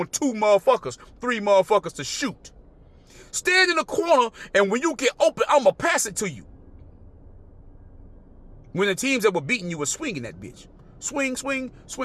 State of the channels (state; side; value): identical; both; correlation 1.00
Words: 2 motherfuckers, 3 motherfuckers to shoot. Stand in the corner, and when you get open, I'm going to pass it to you. When the teams that were beating you were swinging that bitch. Swing, swing,